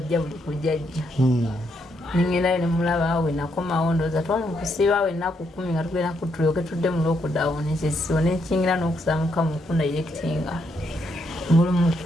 buli kujjajja ningendayo nemulaba we nakomawo ndowooza twali mukusiiba we ennaku 10 nga tugenda tulyoke tudde mu lockdown ekisibo nekingira n'okusaamuka mu kundayirekitinga buli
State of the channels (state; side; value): normal; both; correlation 0.77